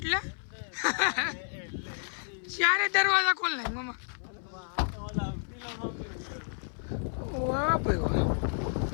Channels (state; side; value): silent; right; 57 dB below the other